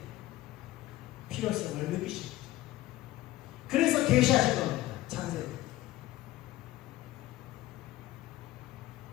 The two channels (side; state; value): right; quieter; 16.3 dB